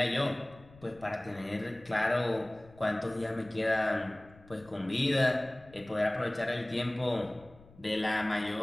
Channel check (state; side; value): noise; left; rumble, 24 dB below the sound